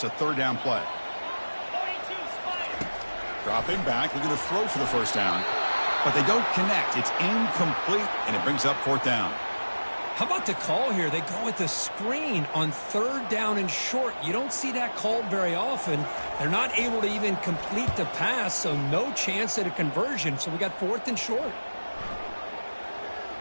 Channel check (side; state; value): both; inverted; correlation -1.00